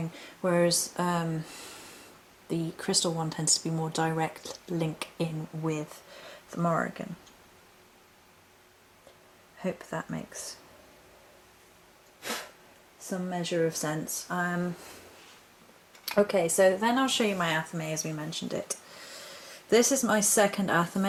whereas the crystal one tends to be more direct link in with the Morrigan. Hope that makes some measure of sense. Okay, so then I'll show you my Athame as we mentioned it. This is my second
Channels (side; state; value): both; identical; correlation 1.00